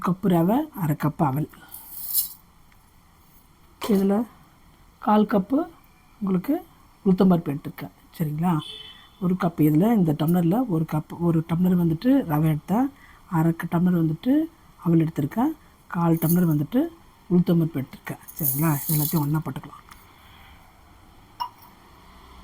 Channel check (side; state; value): both; identical; correlation 1.00